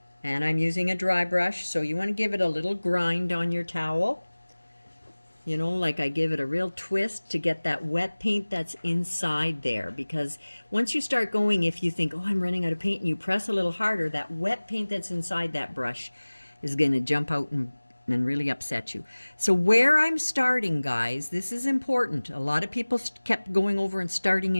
And I'm using a dry brush, so you want to give it a little grind on your towel. You know, like I give it a real twist to get that wet paint that's inside there, because once you start going, if you think, oh, I'm running out of paint, and you press a little harder, that wet paint that's inside that brush is going to jump out and really upset you. So where I'm starting, guys, this is important. A lot of people kept going over and starting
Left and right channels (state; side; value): inverted; both; correlation -1.00